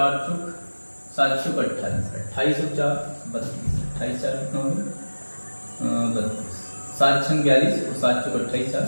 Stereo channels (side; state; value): both; inverted; correlation -1.00